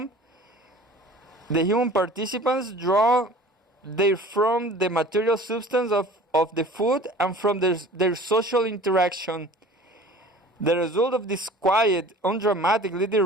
the material substance of the food and from their social interaction. The result of this quiet, undramatic little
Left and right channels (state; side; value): normal; both; correlation 0.44